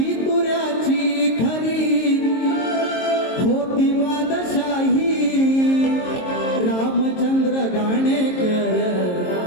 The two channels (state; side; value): late; right; 22 ms